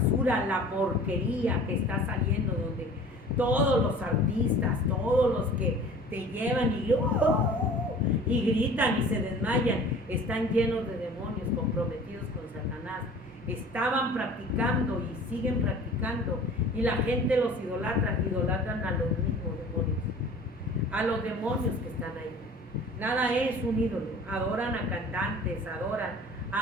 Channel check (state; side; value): normal; both; correlation 0.45